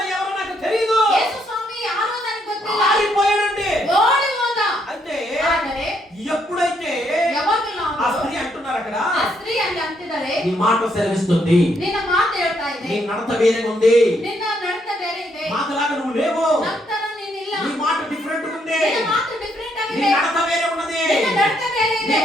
ఎవరో నాకు తెలియదు, యేసు స్వామి యారో ನನಗೆ ಗೊತ್ತಿಲ್ಲ, పారిపోయాడండి. ఓడి ಹೋದ. అంటే ಆದರೆ ఎప్పుడైతే ఆ స్త్రీ అంటున్నారు అక్కడ, ఆ స్త్రీ ಅಲ್ಲಿ ಅಂತಿದ್ದಾರೆ, నీ మాట సెలవిస్తుంది, నిన్న ಮಾತು ಹೇಳ್ತಾ ಇದೆ, నీ నడత వేరే ఉంది, నిన్న నడత ಬೇರೆ ಇದೆ, మాటలాగా నువ్వు లేవు, ನಂತರ ನೀನಿಲ್ಲ, నీ మాట డిఫరెంట్ ఉంది, నిన్న ಮಾತು ಡಿಫರೆಂಟ್ ಆಗಿದೆ, నీ నడత వేరే ఉన్నది, నిన్న నడత ಬೇರೆ ಇದೆ, నీ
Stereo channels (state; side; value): normal; both; correlation 0.74